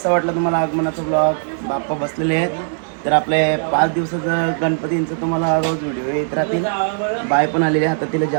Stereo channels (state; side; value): silent; left; 67 dB below the other